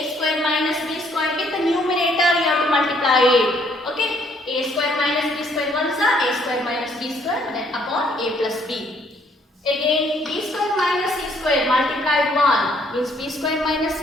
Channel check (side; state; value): both; normal; correlation 0.65